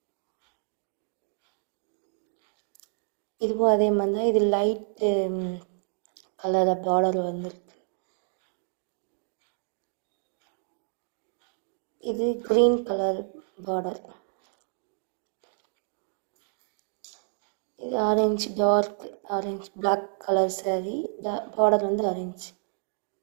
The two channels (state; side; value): silent; left; 58 dB below the other